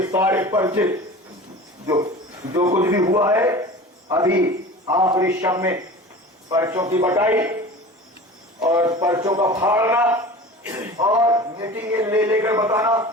سارے پرچے جو کچھ بھی ہوا ہے ابھی آخری شب میں پرچوں کی بٹائی اور پرچوں کا پھاڑنا اور میٹنگ لے کر بتانا،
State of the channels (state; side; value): normal; both; correlation 0.37